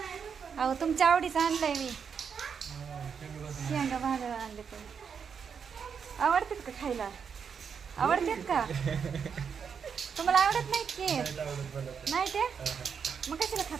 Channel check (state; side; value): quieter; left; 6.7 dB